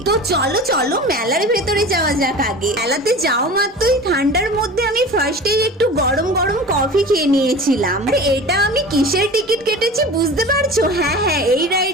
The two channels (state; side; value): normal; both; correlation 0.36